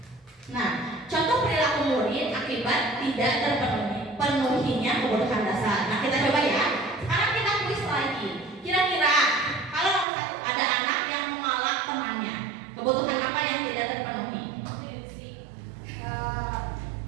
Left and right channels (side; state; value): left; drops out; at 10.1 s